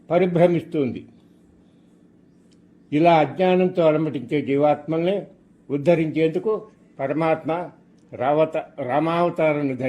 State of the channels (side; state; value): both; identical; correlation 1.00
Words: పరిభ్రమిస్తుంది. ఇలా అజ్ఞానంతో అలమటించే జీవాత్మల్ని ఉద్ధరించేందుకు పరమాత్మ రామావతారాన్ని